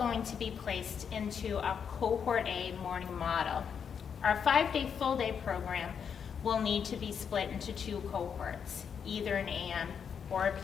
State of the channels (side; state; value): right; quieter; 7.1 dB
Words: to be placed into a cohort A morning model. Our 5-day full day program will need to be split into 2 cohorts, either an AM or a